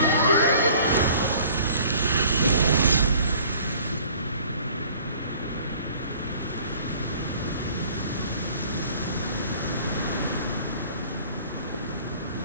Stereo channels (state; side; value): inverted; both; correlation -0.52